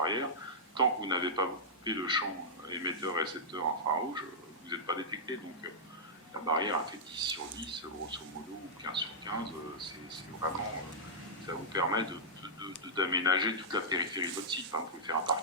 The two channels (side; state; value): both; normal; correlation -0.11